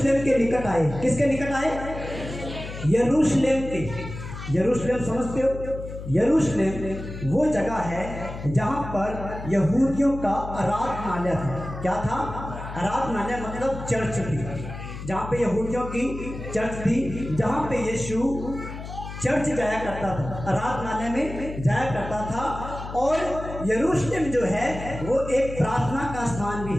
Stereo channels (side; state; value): left; noise; hum, 10 dB below the sound